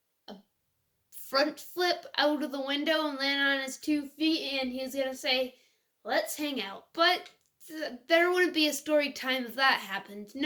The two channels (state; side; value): identical; both; correlation 1.00